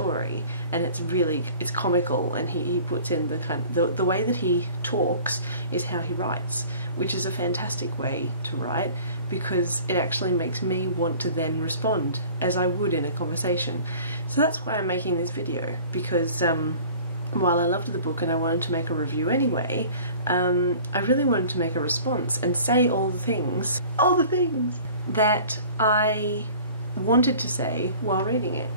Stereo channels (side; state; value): both; inverted; correlation -0.46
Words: and it's comical, and he puts in the way that he talks is how he writes, which is a fantastic way to write because it actually makes me want to then respond as I would in a conversation. So that's why I'm making this video, because while I loved the book and I wanted to make a review anyway, I really wanted to make a response and say all the things that I wanted to say while reading it.